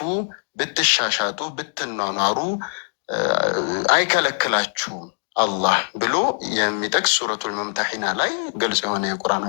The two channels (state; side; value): silent; right; 64 dB below the other